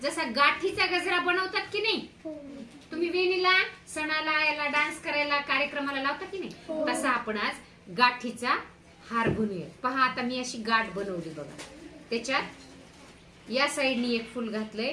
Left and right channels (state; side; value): identical; both; correlation 1.00